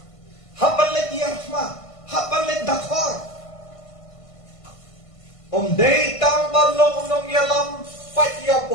hapan let yarfma hapan let dakhar om day tang balong nong yalam Pat ya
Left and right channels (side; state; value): right; late; 1.5 ms